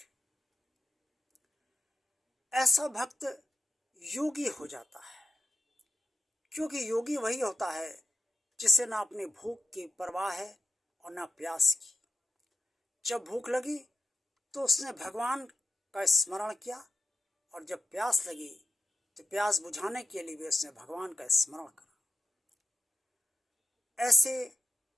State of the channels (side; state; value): both; normal; correlation 0.91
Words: ऐसा भक्त योगी हो जाता है, क्योंकि योगी वही होता है जिसे ना अपनी भूख की परवाह है और ना प्यास की। जब भूख लगी तो उसने भगवान का स्मरण किया और जब प्यास लगी तो प्यास बुझाने के लिए भी उसने भगवान का स्मरण करा। ऐसे